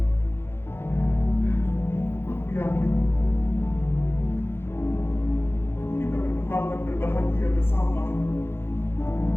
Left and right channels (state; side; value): late; right; 0.11 ms